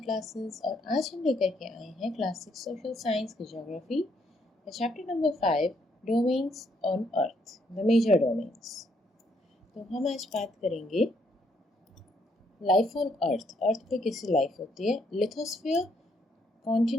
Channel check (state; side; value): normal; both; correlation 0.72